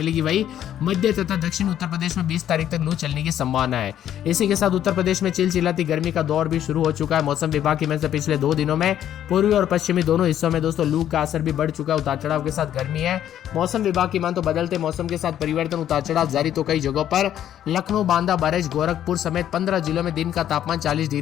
वही मध्य तथा दक्षिण उत्तर प्रदेश में 20 तारीख तक लू चलने की संभावना है। इसी के साथ उत्तर प्रदेश में चिलचिलाती गर्मी का दौर भी शुरू हो चुका है। मौसम विभाग की से पिछले 2 दिनों में पूर्वी और पश्चिमी दोनों हिस्सों में दोस्तों लू का असर भी बढ़ चुका है। उतार चढ़ाव के साथ गर्मी है। मौसम विभाग की मान तो बदलते मौसम के साथ परिवर्तन, उतार चढ़ाव जारी तो कई जगहों पर लखनऊ, बांदा, बरेच, गोरखपुर समेत 15 जिलों में दिन का तापमान 40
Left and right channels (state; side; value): quieter; right; 10.9 dB